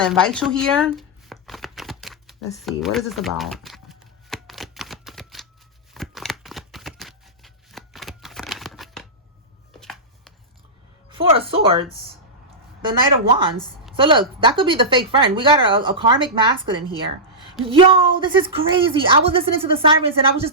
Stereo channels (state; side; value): normal; both; correlation -0.13